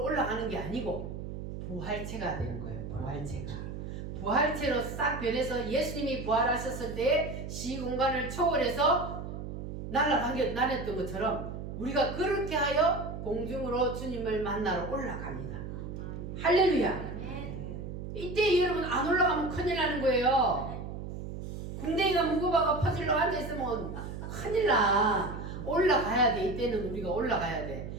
올라가는 게 아니고 부활체가 되는 거예요. 부활체로 싹 변해서 예수님이 부활하셨을 때 시공간을 초월해서 날았던 것처럼 우리가 그렇게 하여 공중으로 주님을 만나러 올라갑니다. 할렐루야. 이때 여러분 안 올라가면 큰일 나는 거예요. 궁뎅이가 무거워가 퍼질러 앉아있으면 큰일 나. 올라가야 돼. 이때는 우리가 올라가야 돼.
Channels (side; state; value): right; noise; hum, 7 dB below the sound